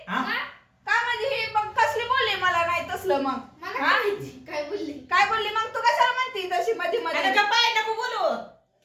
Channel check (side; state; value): both; identical; correlation 1.00